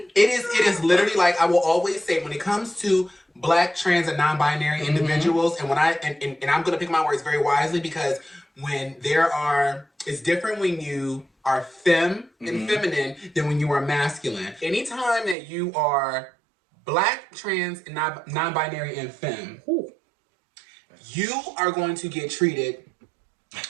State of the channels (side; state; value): left; drops out; at 15.4 s